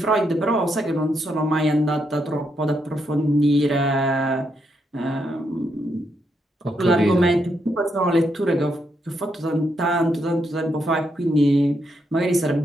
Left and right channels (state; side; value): normal; both; correlation 0.79